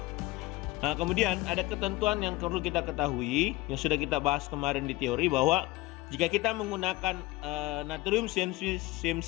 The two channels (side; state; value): right; quieter; 19.6 dB